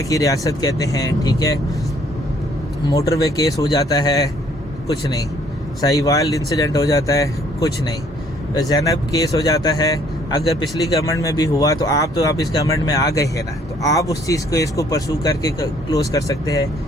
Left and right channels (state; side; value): normal; both; correlation 0.62